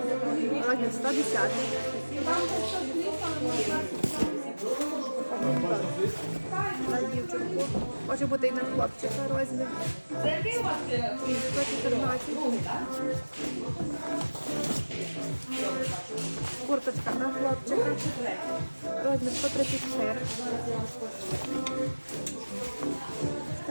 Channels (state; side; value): inverted; both; correlation -1.00